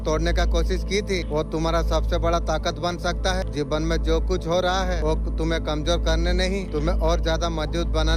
तोड़ने का कोशिश की थी, वो तुम्हारा सबसे बड़ा ताकत बन सकता है। जीवन में जो कुछ हो रहा है वो तुम्हें कमजोर करने नहीं, तुम्हें और ज्यादा मजबूत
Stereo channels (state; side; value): identical; both; correlation 1.00